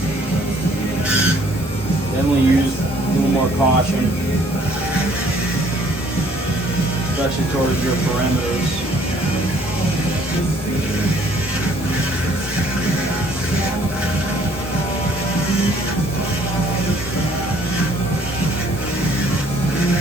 use a little more caution, especially towards your perimeters.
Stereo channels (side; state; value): both; normal; correlation 0.60